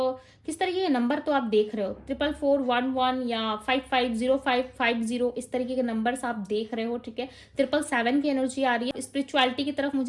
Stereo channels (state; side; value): identical; both; correlation 1.00